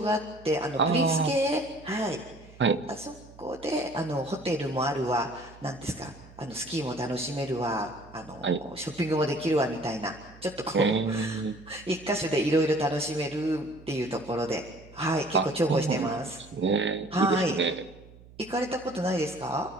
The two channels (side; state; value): right; noise; hum, 21 dB below the sound